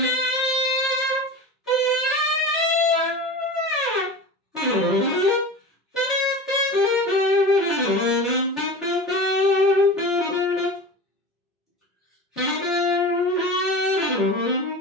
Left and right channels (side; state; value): both; normal; correlation 0.31